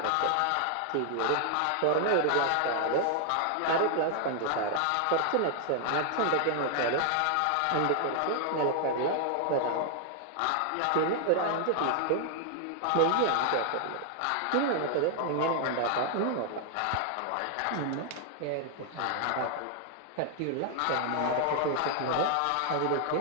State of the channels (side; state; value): both; different; correlation 0.00